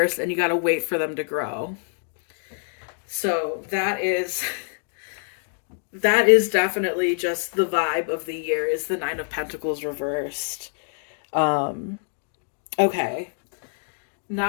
and you got to wait for them to grow. So that is definitely just the vibe of the year, is the 9 of Pentacles reversed. Okay.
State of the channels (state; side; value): silent; right; digital silence